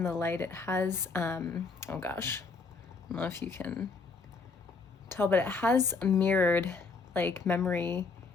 the light, it has, oh gosh, I don't know if you can tell, but it has mirrored like memory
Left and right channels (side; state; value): right; quieter; 4.4 dB